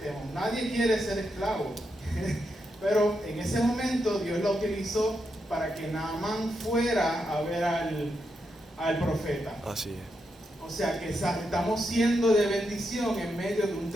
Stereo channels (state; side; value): normal; both; correlation 0.84